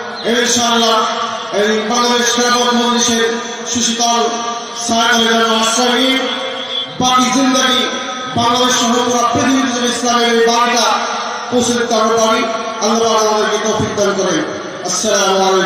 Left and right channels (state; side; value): identical; both; correlation 1.00